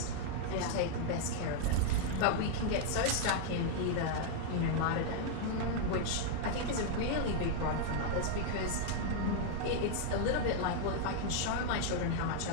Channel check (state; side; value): different; both; correlation -0.01